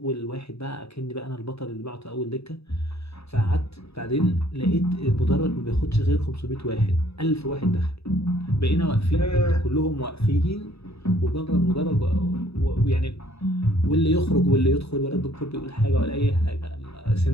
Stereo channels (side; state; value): right; late; 0.79 ms